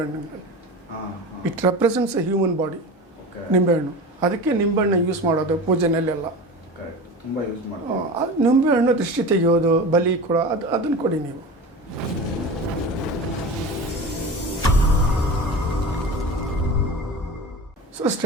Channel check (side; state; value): both; normal; correlation 0.31